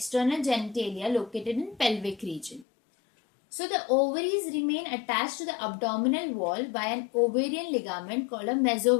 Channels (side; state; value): right; drops out; at 2.7 s